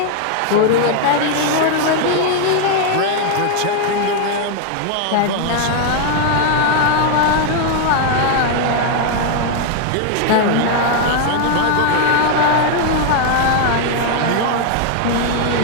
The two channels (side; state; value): both; different; correlation 0.00